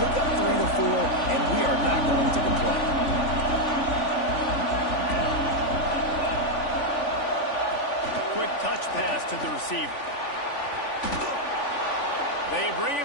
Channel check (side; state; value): right; late; 3.5 ms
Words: pick up 3 to 4, and we are not going to complain. Quick touch pass to the receiver. They bring